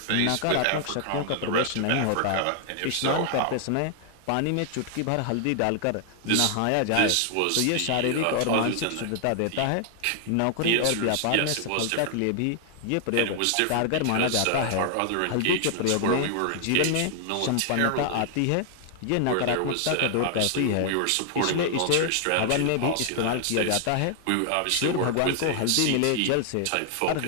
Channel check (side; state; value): both; different; correlation 0.00